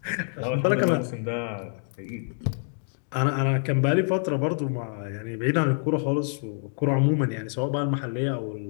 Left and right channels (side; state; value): right; silent; digital silence